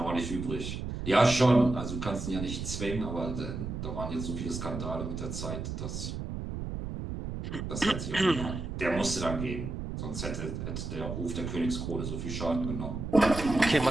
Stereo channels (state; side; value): noise; right; rumble, 5 dB below the sound